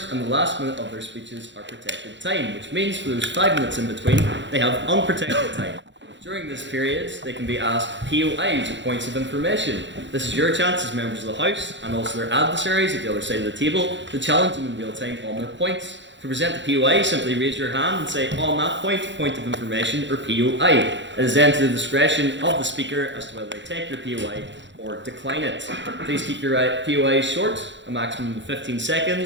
and the last minute of their speeches are protected time, which means for those 5 minutes in between, they have unprotected time. During this period, they can be asked POIs, or points of information. This is your chance as members of the House, and also their adversaries at the other side of the table, to challenge them in real time on their points. To present the POI, simply raise your hand and say, on that point of information, or POI. It is then to the discretion of the speaker as to whether they take your POI or decline it. Please keep your POI short, a maximum of 15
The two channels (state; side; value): late; left; 0.53 ms